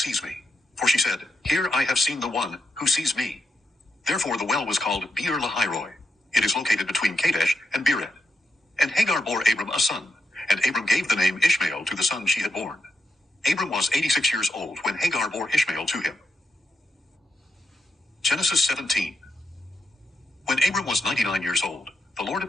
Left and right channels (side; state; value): both; normal; correlation 0.83